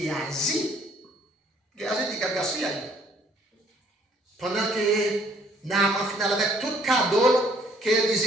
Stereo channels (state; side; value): normal; both; correlation 0.62